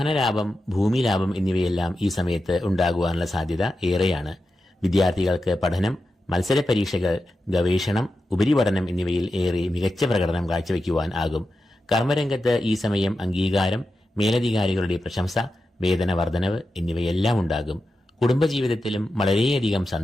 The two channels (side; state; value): both; normal; correlation 0.90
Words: ഭൂമി ലാഭം എന്നിവയെല്ലാം ഈ സമയത്ത് ഉണ്ടാകുവാനുള്ള സാധ്യത ഏറെയാണ്. വിദ്യാർത്ഥികൾക്ക് പഠനം, മത്സര പരീക്ഷകൾ, ഗവേഷണം, ഉപരിപഠനം എന്നിവയിൽ ഏറെ മികച്ച പ്രകടനം കാഴ്ചവെക്കുവാൻ ആകും. കർമ്മരംഗത്ത് ഈ സമയം അംഗീകാരം, മേലധികാരികളുടെ പ്രശംസ, വേതന വർധനവ് എന്നിവയെല്ലാം ഉണ്ടാകും. കുടുംബജീവിതത്തിലും വളരെയധികം